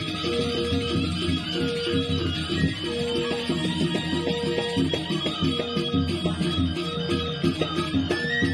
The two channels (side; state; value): both; identical; correlation 1.00